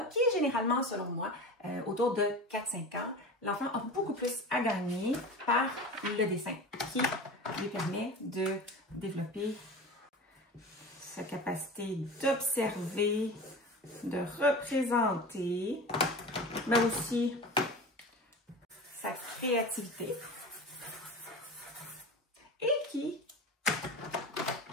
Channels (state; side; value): normal; both; correlation 0.33